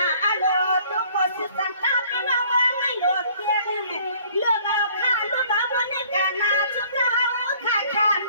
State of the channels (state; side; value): inverted; both; correlation -0.57